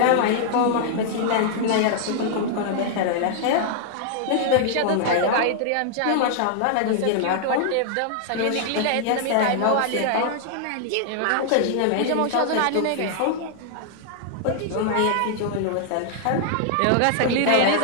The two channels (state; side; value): different; both; correlation 0.00